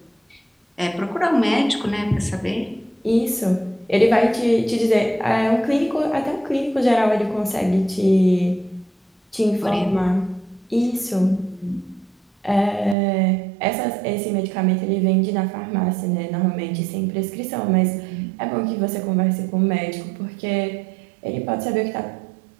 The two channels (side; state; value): left; drops out; at 13.0 s